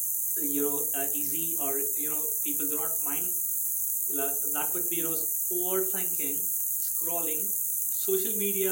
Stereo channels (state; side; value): noise; right; hum, 28 dB below the sound